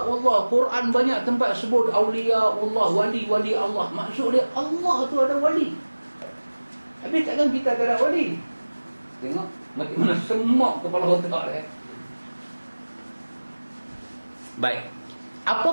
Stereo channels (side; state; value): both; inverted; correlation -1.00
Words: Allah, Quran banyak tempat sebut awliya Allah, wali-wali Allah. Maksud dia Allah tu ada wali. Habis takkan kita tak ada wali? Tengok macam mana semak kepala otak dia. Baik.